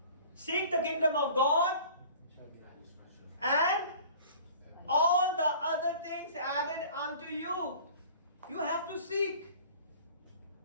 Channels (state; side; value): inverted; both; correlation -0.46